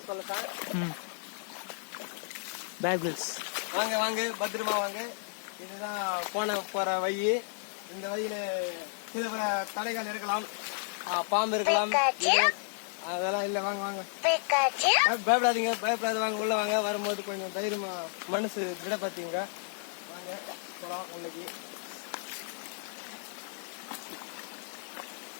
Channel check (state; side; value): silent; right; digital silence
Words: சொல்ல சார். பேபிள்ஸ். வாங்க வாங்க பத்திரமா வாங்க. இதுதான் போற வழி. இந்த வழியில சில பல தடைகள் இருக்கலாம், பாம்பு இருக்கலாம், அதெல்லாம் இல்ல. வாங்க வாங்க, பயப்படாதீங்க, பயப்படாத, வாங்க உள்ள வாங்க. வரும்போது கொஞ்சம் தைரியமா மனசு திடப்படுத்திங்க. வாங்க போலாம் உள்ளக்கு.